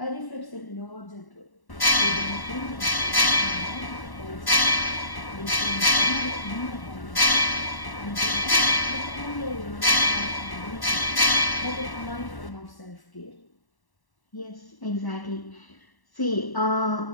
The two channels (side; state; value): right; late; 1.1 ms